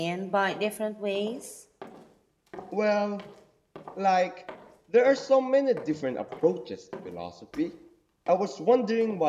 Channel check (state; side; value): identical; both; correlation 1.00